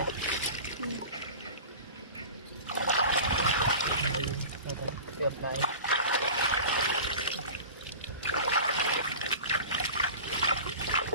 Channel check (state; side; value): inverted; both; correlation -0.35